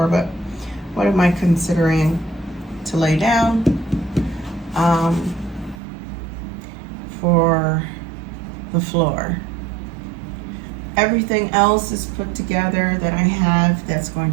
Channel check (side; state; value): left; drops out; at 5.8 s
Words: but what am I considering to lay down for the floor? Everything else is put together that I have that's going